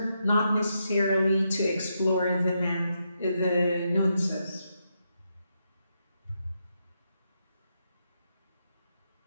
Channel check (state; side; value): inverted; both; correlation -0.82